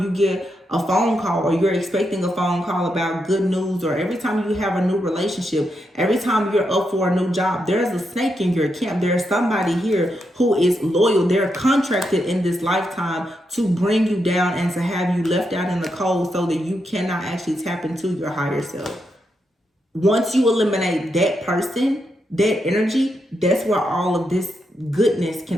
you get a phone call, or you're expecting a phone call about good news, or every time you have a new relationship, every time you're up for a new job, there's a snake in your camp. There's somebody here who is loyal. They're contracted in this lifetime to bring you down and to have you left out in the cold so that you cannot actually tap into your higher self. Once you eliminate that person, that energy, that's where all of this goodness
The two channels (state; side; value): normal; both; correlation 0.83